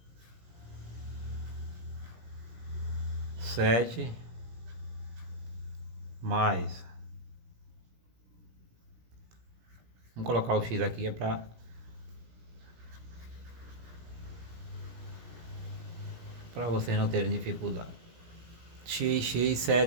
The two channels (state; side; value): late; left; 17 ms